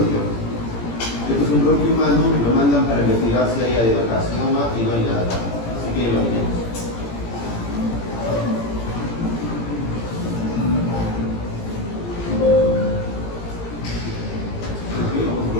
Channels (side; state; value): right; late; 17 ms